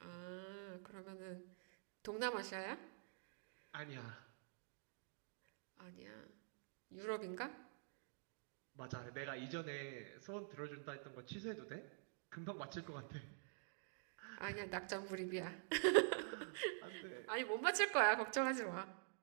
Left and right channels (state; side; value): silent; left; digital silence